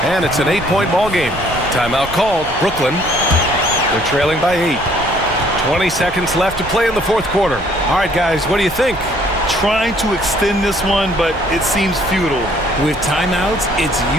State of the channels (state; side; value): noise; right; rumble, 14 dB below the sound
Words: and it's an 8-point ball game. Timeout called. Brooklyn. They're trailing by 8. 20 seconds left to play in the fourth quarter. All right, guys, what do you think? Trying to extend this one, but it seems futile. With timeouts, it's